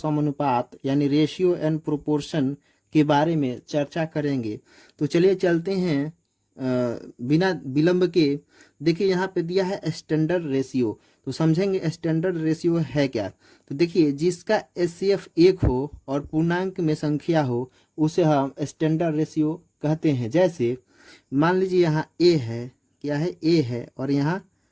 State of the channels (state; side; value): identical; both; correlation 1.00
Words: यानी रेशियो एंड प्रोपोर्शन के बारे में चर्चा करेंगे। तो चलिए चलते हैं बिना विलंब के। देखिए यहाँ पे दिया है स्टैंडर्ड रेशियो, तो समझेंगे स्टैंडर्ड रेशियो है क्या। तो देखिए, जिसका एचसीएफ 1 हो और पूर्णांक में संख्या हो उसे हम स्टैंडर्ड रेशियो कहते हैं। जैसे मान लीजिए यहाँ ए है, क्या है, ए है और यहाँ